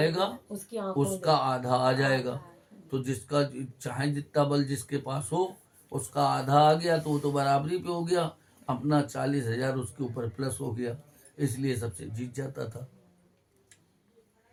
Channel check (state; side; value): identical; both; correlation 1.00